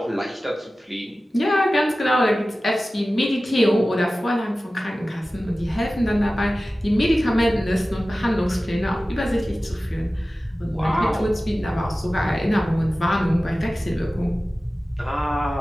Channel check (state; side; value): normal; both; correlation 0.96